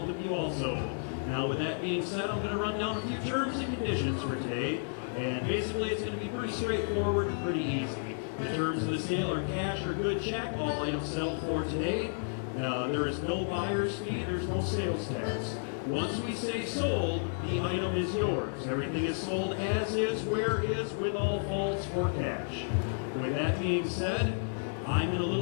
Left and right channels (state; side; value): silent; right; 56 dB below the other